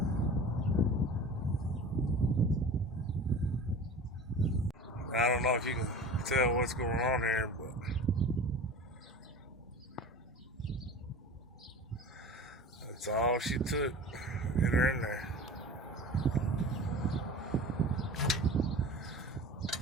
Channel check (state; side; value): normal; both; correlation 0.37